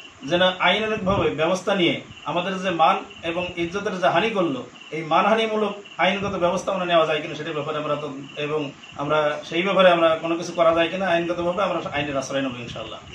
যেন আইনানুগভাবে ব্যবস্থা নিয়ে আমাদের যে মান এবং ইজ্জতের যে হানি করলো, এই মানহানিমূলক আইনগত ব্যবস্থা আমরা নেওয়া যায় কিনা সেটার ব্যাপারে আমরা তো, এবং আমরা সেই ব্যাপারে আমরা কোনো কিছু করা যায় কিনা আইনগতভাবে আমরা আইনের আশ্রয় নেব ইনশাআল্লাহ।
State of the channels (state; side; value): identical; both; correlation 1.00